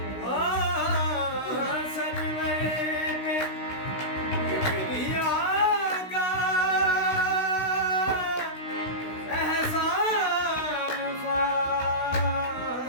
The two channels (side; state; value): right; late; 16 ms